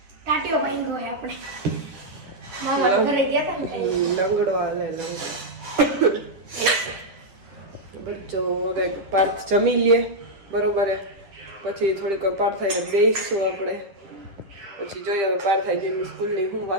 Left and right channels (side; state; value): left; late; 11 ms